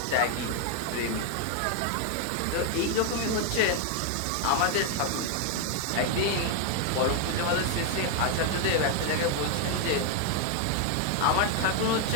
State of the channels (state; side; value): different; both; correlation 0.00